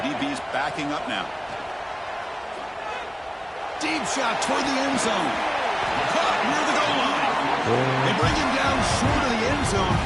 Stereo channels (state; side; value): identical; both; correlation 1.00